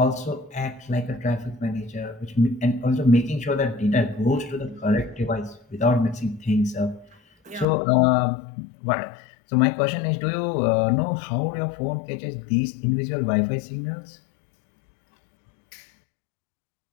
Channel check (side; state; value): right; drops out; at 7.7 s